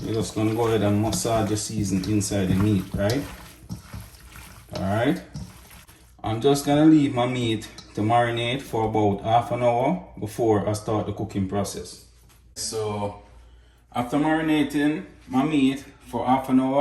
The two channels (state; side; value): identical; both; correlation 1.00